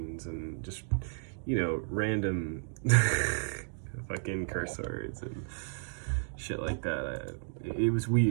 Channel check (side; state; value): left; silent; digital silence